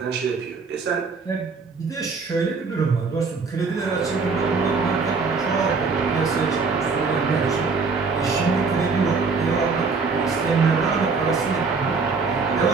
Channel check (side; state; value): left; quieter; 4.6 dB